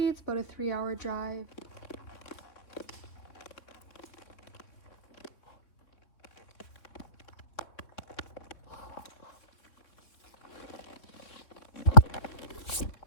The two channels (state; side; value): late; right; 3.6 ms